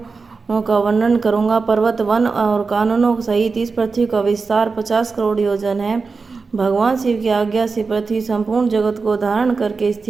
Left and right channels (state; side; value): quieter; left; 4.5 dB